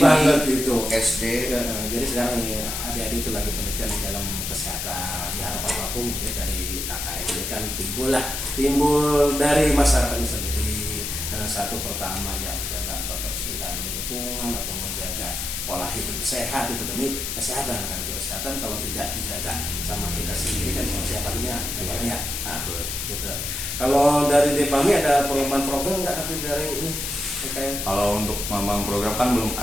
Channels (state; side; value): noise; left; hiss, 4 dB below the sound